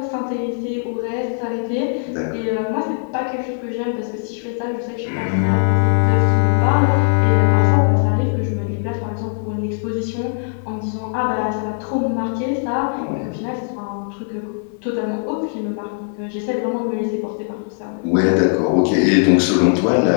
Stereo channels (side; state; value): right; silent; digital silence